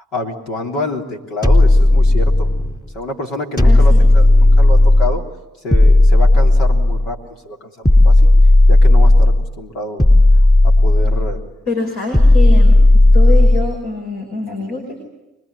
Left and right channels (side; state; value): both; normal; correlation 0.95